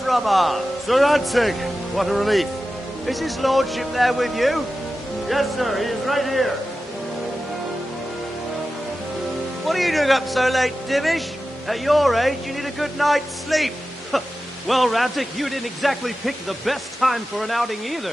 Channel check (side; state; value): both; normal; correlation 0.93